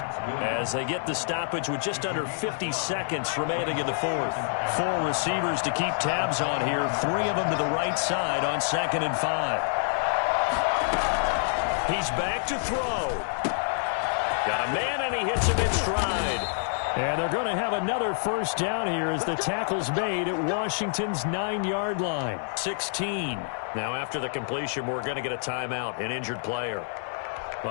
as they get the stoppage with just under 50 seconds remaining in the fourth. 4 receivers to keep tabs on here, 3 of them to the right side on 2nd and 5. He's back to throw. Got a man, and he hits him in stride. And they're going to have another first down here as the tackle's made at Washington's 9-yard line. 16. Now after the completion, we're going to get a timeout, an injured player.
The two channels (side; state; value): right; silent; digital silence